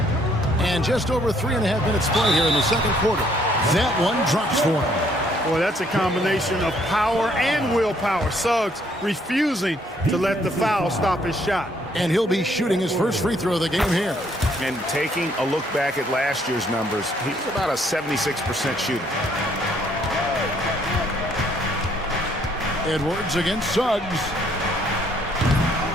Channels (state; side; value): normal; both; correlation 0.66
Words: And just over 3.5 minutes play here in the second quarter. That one drops for him. Boy, that's a combination of power and willpower. Suggs refusing to let the foul stop his shot. And he'll be shooting his first free throw of the game here. And taking a look back at last year's numbers, he's about a 76% shooter. Edwards against Suggs.